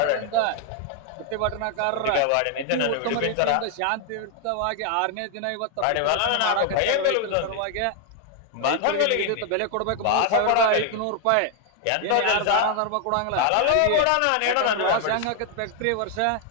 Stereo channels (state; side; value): different; both; correlation 0.00